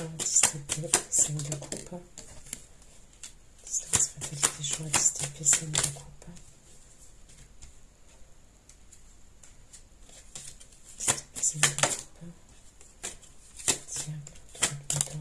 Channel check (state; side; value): identical; both; correlation 1.00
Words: 10 d'épée, 5 de coupe. Distance, fatalité, joie, 10 d'épée, 5 de coupe. C'est de coupe.